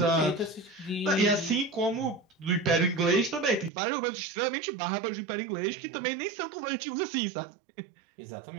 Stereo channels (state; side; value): drops out; left; at 3.7 s